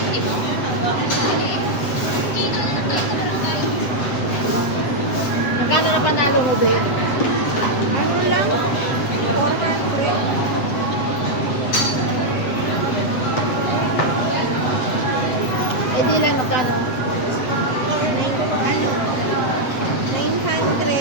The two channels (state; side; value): late; right; 7.9 ms